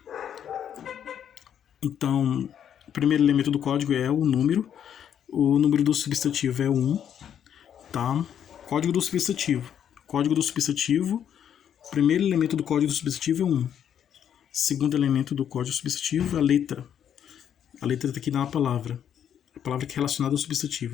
Então, o primeiro elemento do código é o número. O número do substantivo é 1. Tá? Código do substantivo. Código do substantivo. Primeiro elemento do código do substantivo é 1. Segundo elemento do código substantivo é a letra. A letra está aqui na palavra. A palavra que é relacionada ao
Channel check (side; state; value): right; quieter; 9.2 dB